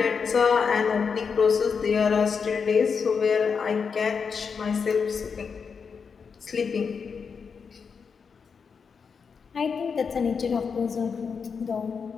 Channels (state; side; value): quieter; right; 5.8 dB